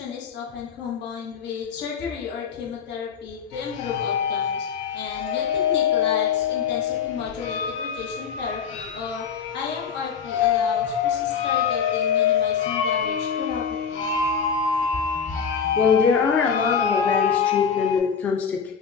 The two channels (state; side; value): quieter; right; 6.8 dB